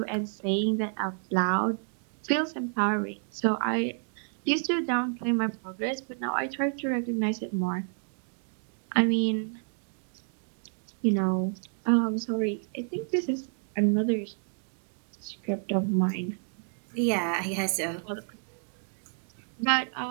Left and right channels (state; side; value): silent; left; 58 dB below the other